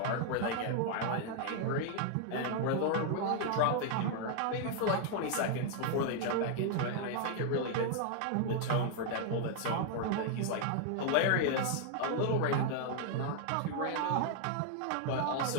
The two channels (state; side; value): different; both; correlation 0.00